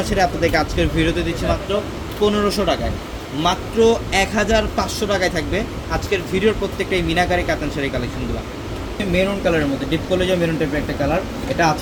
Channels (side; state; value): both; identical; correlation 1.00